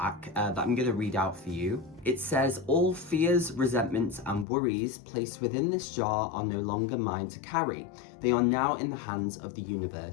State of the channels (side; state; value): right; drops out; at 4.5 s